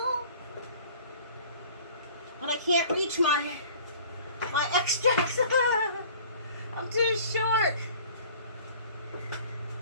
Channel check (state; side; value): inverted; both; correlation -0.48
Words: But I can't reach my extracts. I'm too short.